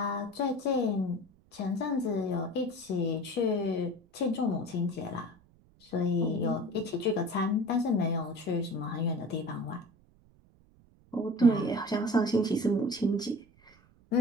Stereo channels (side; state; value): right; noise; rumble, 29 dB below the sound